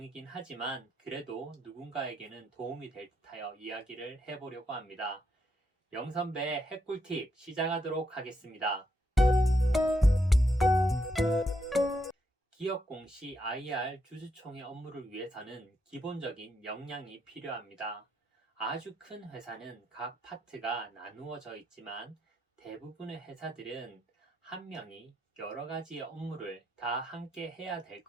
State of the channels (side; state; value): both; normal; correlation 0.79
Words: 하지만 그래도 누군가에게는 도움이 될 듯하여 이야기를 해보려고 합니다. 영선배의 핵꿀팁 시작하도록 하겠습니다. 기업 공시 IR 주주총회 업무를 위해서는 기본적인 역량이 필요합니다. 아주 큰 회사는 각 파트가 나누어져 있지만 대부분의 회사들은 한 명이 여러 가지의 업무를 다 함께 해야 될